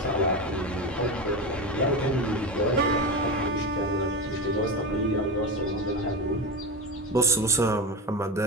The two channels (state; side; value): normal; both; correlation 0.21